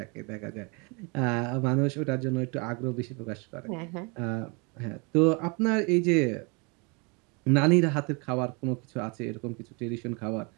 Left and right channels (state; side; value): quieter; left; 31.4 dB